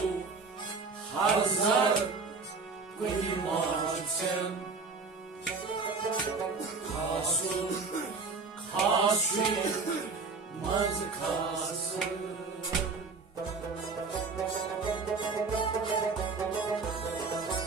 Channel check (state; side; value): quieter; left; 4.3 dB